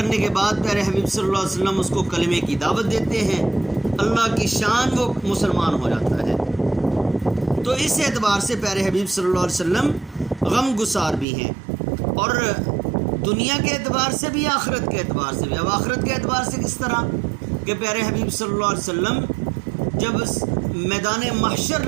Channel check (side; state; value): left; drops out; at 11.2 s